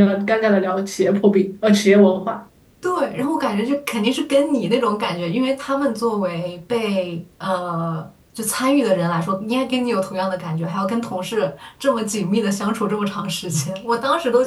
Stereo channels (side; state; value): both; identical; correlation 1.00